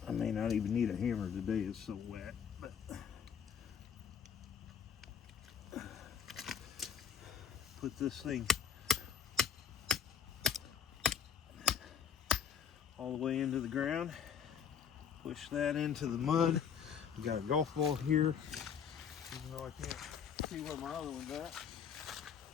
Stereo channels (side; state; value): right; quieter; 7.6 dB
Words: I may not even need a hammer today, it's so wet. But put this thing all the way into the ground, push that into the mud. We got a golf ball here, even though I can't see where my other one's at.